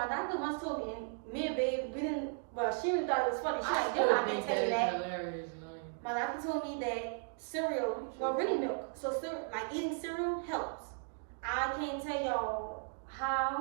doctor once told me, and me and Babe, we didn't, but she really thought it was funny. She's like, still you're not gonna think tell you is that. hilarious, man. My doctor told me that cereal, well, really milk. So like eating cereal helps. I can't tell y'all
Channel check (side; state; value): left; silent; 54 dB below the other